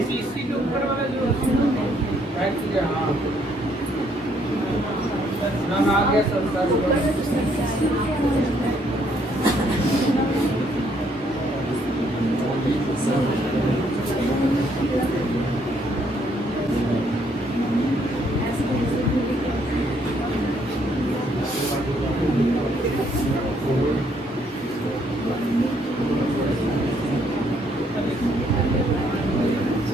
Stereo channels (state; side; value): normal; both; correlation 0.69